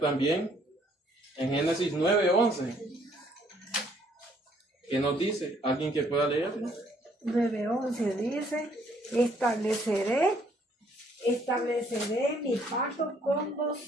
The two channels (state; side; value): normal; both; correlation 0.65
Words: en Génesis 9:11. ¿Qué nos dice? ¿Alguien que pueda leerlo? 9:11 dice, estableceré mi pacto con